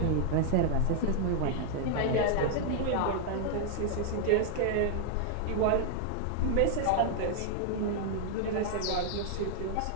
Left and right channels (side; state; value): both; different; correlation 0.00